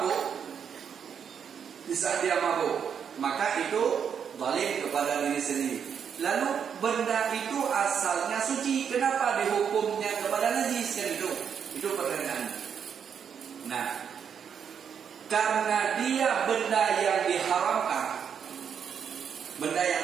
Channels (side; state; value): left; quieter; 7.5 dB